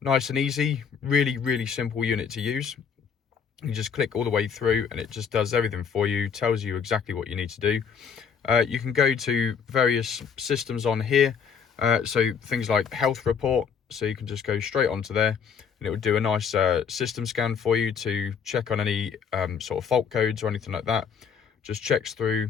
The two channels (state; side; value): quieter; right; 6.7 dB